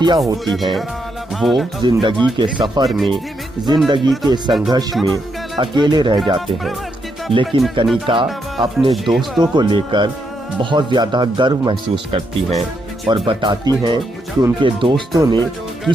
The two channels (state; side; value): normal; both; correlation 0.79